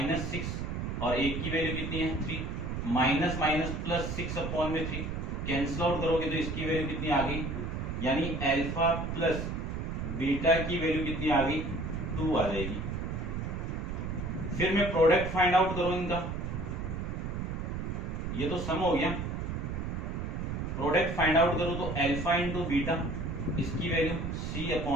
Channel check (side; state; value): right; noise; rumble, 3 dB below the sound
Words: और a की वैल्यू कितनी है 3, minus minus plus 6/3 cancel out करोगे तो इसकी वैल्यू कितनी आ गई, यानी अल्फा प्लस बीटा की वैल्यू कितनी आ गई 2 आ जाएगी। फिर मैं प्रोडक्ट फाइंड आउट करूं इनका, ये तो सम हो गया, प्रोडक्ट फाइंड आउट करूं तो अल्फा इंटू बीटा, इसकी वैल्यू